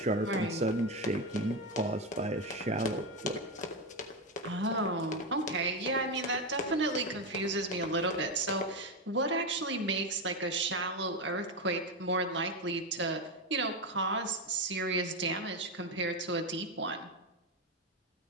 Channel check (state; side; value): normal; both; correlation 0.11